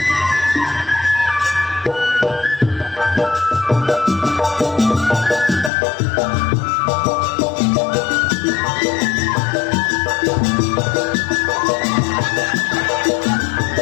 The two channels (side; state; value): right; drops out; at 5.7 s